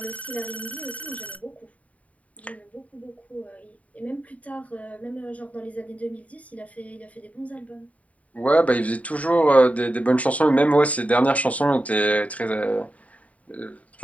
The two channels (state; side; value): late; right; 0.068 ms